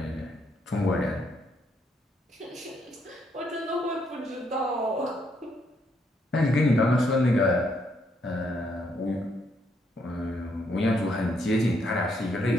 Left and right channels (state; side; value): normal; both; correlation 0.74